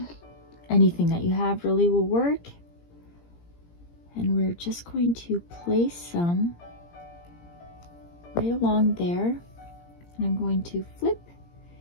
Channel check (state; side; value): late; right; 17 ms